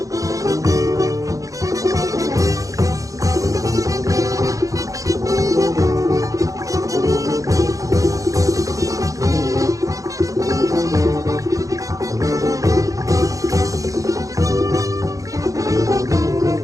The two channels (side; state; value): left; late; 0.16 ms